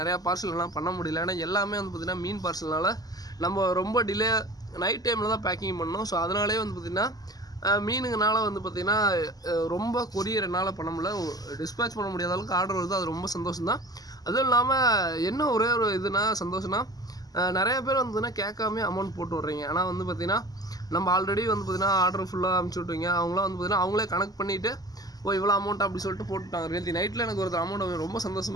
பார்சல் எல்லாம் பண்ண முடியல. ஏன்னா எல்லாமே வந்து பார்த்தீங்கன்னா மீன் பார்சல்னால நம்ம ரொம்ப டிலே நைட் டைமில் தான் பேக்கிங் பண்ணோம். ஸோ அதனாலே வந்து பார்த்திங்கன்னா மீனுங்கனால வந்து பார்த்திங்கன்னா ரொம்ப கொரியர் என்னால் பண்ண முடியல. டிஸ்பேச் பண்ண முடியாத அளவுக்கு ஆர்டர் வருது. அது ரொம்ப சந்தோஷம் தான். அதுவும் இல்லாமல் என்ன ஒரே ஒரு இதுனா சந்தோஷம்னா நிறைய பேர் வந்துன்னா கேட்காமே அமௌண்ட் போட்டு விட்றீங்க. ஆனால் வந்து பார்த்திங்கன்னா நம்ம ஆல்ரெடி வந்து பார்த்திங்கன்னா ஆர்டர் ஃபுல்லாக அனுப்பிச்சி விட்ருவீங்க. அவங்களாம் வந்து பார்த்திங்கன்னா அவங்களே கனெக்ட் பண்ணிவிட்டு இவ்வளோ அமௌண்ட் அப்படி சொல்லிட்டு போட்டுட்டாங்க. நேற்று நைட்டில் எனக்கு ஒரு அமௌண்ட் ரொம்ப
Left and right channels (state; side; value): late; right; 0.18 ms